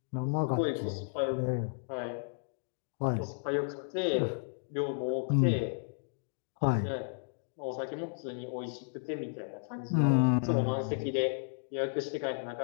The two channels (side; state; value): right; silent; digital silence